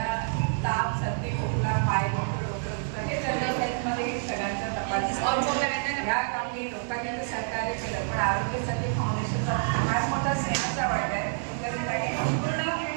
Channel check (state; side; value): silent; left; digital silence